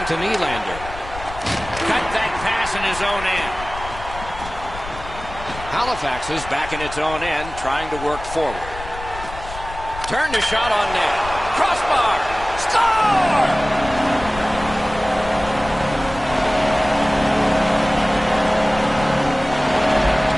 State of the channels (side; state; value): left; noise; rumble, 13 dB below the sound